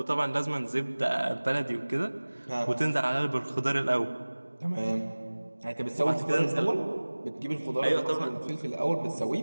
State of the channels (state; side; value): inverted; both; correlation -1.00